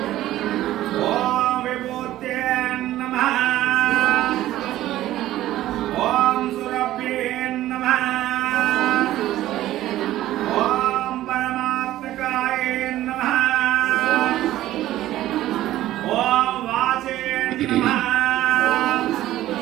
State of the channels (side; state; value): left; quieter; 14.4 dB